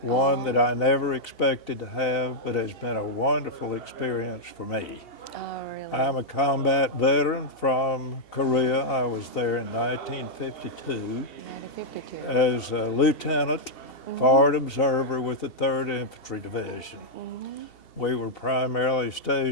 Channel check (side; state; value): right; late; 2.7 ms